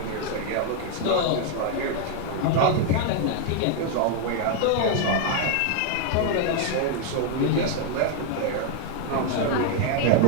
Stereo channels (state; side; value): different; both; correlation 0.00